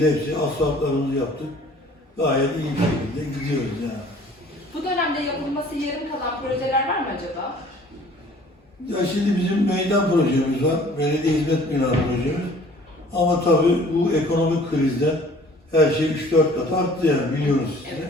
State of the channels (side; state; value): both; normal; correlation 0.52